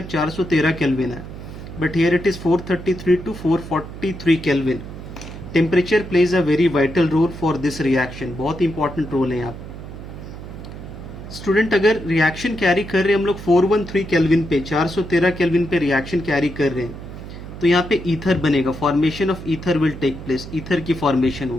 413 केल्विन है, but here it is 433 to 443 Kelvin. Temperature plays a very vital role for this reaction. बहुत important role है यहाँ. Student अगर reaction carry कर रहे हैं हम लोग 413 केल्विन पे, 413 केल्विन पे रिएक्शन कैरी कर रहे हैं, तो यहाँ पे ईथर बनेगा. Formation of ether will take place. Ether की फॉर्मेशन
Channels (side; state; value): right; noise; hum, 12 dB below the sound